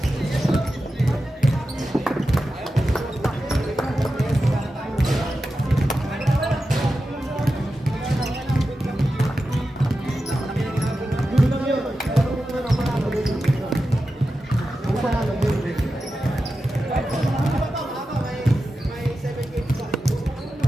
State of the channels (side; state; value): both; normal; correlation 0.91